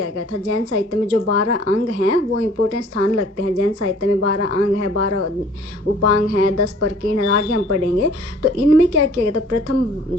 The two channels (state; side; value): normal; both; correlation 0.53